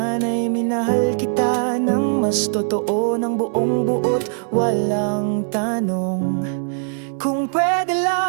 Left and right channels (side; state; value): left; silent; digital silence